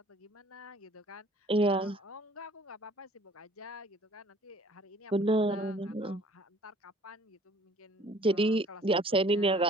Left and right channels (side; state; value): both; normal; correlation 0.54